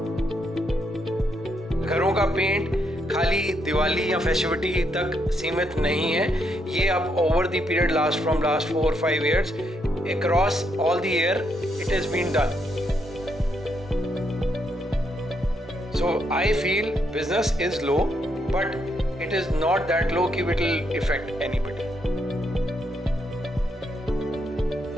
घरों का पेंट खाली दिवाली या फेस्टिविटी तक सीमित नहीं है, ये अब over the period last 4-5 years across all the year it has been done. So I feel business is low, but it is not that low कि it will affect anybody.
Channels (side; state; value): both; normal; correlation 0.77